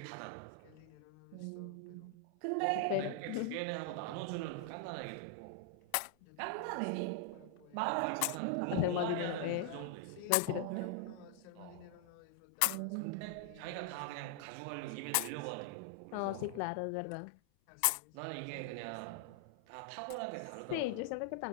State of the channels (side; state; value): both; different; correlation 0.00